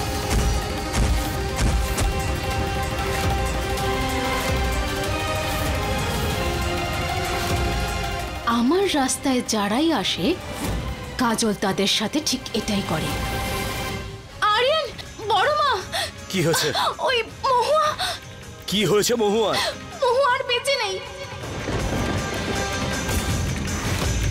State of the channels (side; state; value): both; identical; correlation 1.00